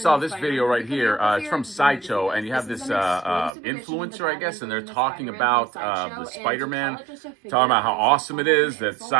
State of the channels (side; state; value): left; drops out; at 3.5 s